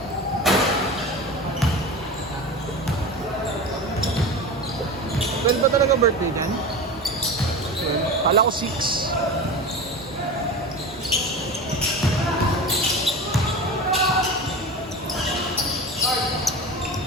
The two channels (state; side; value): normal; both; correlation 0.29